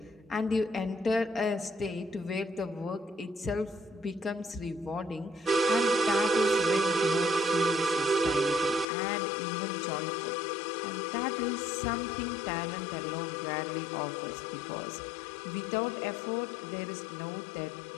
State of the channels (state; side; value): drops out; right; at 8.8 s